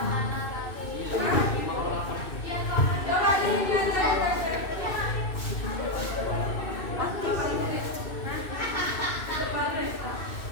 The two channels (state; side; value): late; right; 2.6 ms